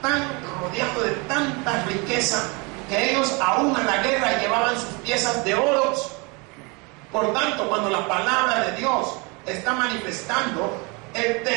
tan rodeados de tanta riqueza que ellos aún a la guerra llevaban sus piezas de oro. Por tanto, cuando la palabra de Dios está manifestando el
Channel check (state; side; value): quieter; left; 29.1 dB